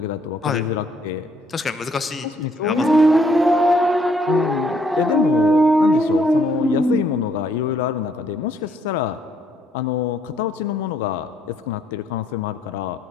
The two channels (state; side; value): normal; both; correlation 0.68